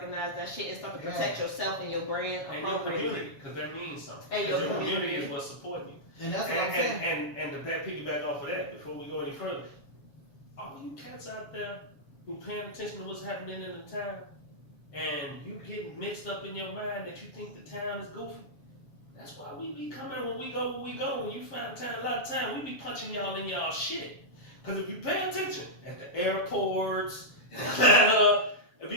that shit and start to protect yourself and your brand And your appropriately. community, because that means something. And 'Cause your your community community. is what's supporting you. And that's what I'm saying. And to piggyback off of that, before we go any further, all you cats out there who paying attention to what's happening in the town, and you getting mixed up in your mind that you think the town is goofy, that's why we be coming when we go where we go. When you find time, a lot of time, we be punching y'all in y'all shit. Because if you pay attention at the airports, it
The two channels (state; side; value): late; right; 7.2 ms